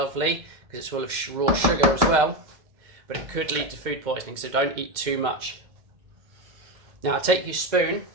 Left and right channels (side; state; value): left; late; 2.1 ms